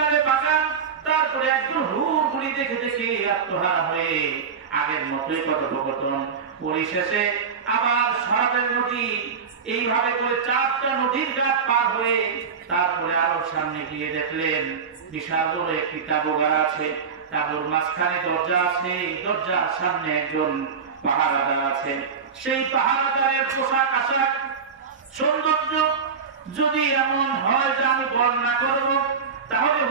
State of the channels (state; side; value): quieter; left; 6.1 dB